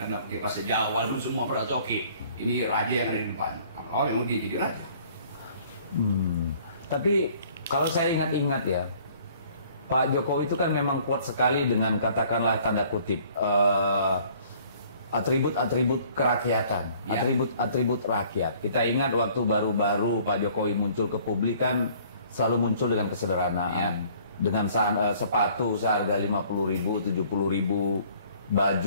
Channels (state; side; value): inverted; both; correlation -0.57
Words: pakai bahasa Jawa, lu semua merasa oke, ini raja yang ada di depan. Oh memang dia jadi raja. Tapi kalau saya ingat-ingat ya, Pak Jokowi itu kan memang kuat sekali dengan katakanlah tanda kutip atribut-atribut kerakyatan, atribut-atribut rakyat. Kita ingat waktu baru-baru Pak Jokowi muncul ke publik kan selalu muncul dengan kesederhanaan, dengan sepatu seharga 50.000, 70.000,